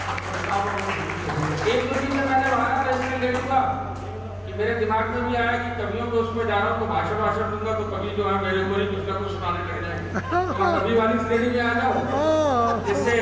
एक दो दिन में मैंने वहां था, इसलिए ले लूंगा कि मेरे दिमाग में भी आया कि कवियों को उसमें जा रहा हूँ तो भाषण दूंगा तो कवि जो है मेरे ऊपर ही कुछ ना कुछ सुनाने लग जाएंगे। तो कवि वाली श्रेणी में आ जाओ, जिससे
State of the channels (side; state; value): both; identical; correlation 1.00